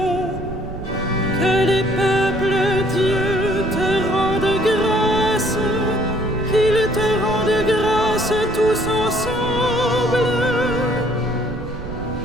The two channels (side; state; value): right; noise; rumble, 10 dB below the sound